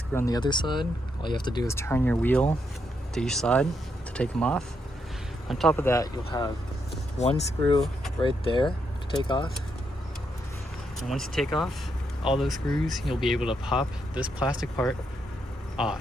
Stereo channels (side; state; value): both; normal; correlation 0.79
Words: on the other side. All you have to do is turn your wheel to each side to take them off. On top of that, you'll have one screw right there to take off. And once you take off all those screws, you'll be able to pop this plastic part